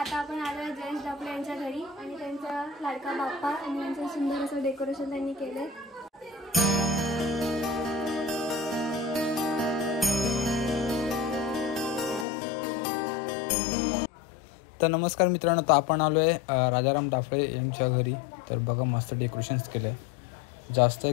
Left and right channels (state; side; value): drops out; right; at 12.2 s